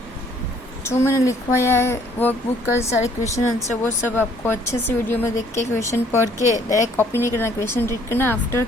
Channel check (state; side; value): normal; both; correlation 0.61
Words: जो मैंने लिखवाया है workbook का सारे question answer वो सब आपको अच्छे से वीडियो में देख के क्वेश्चन पढ़ के डायरेक्ट कॉपी नहीं करना, क्वेश्चन रीड करना, आफ्टर